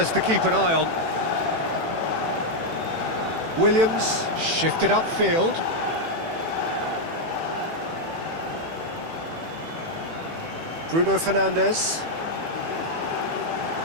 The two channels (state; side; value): late; left; 18 ms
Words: to keep an eye on. Williams shifted upfield. Bruno Fernandes.